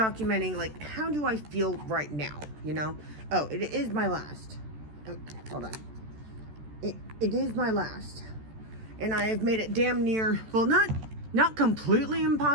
like how do I feel right now, you know? Oh, it is my last. Oh, hold on. It is my last. And I have made it damn near, well, not completely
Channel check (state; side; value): late; left; 14 ms